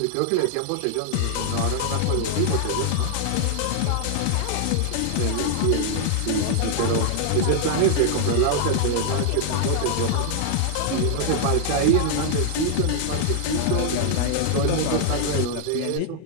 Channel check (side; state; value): both; different; correlation 0.00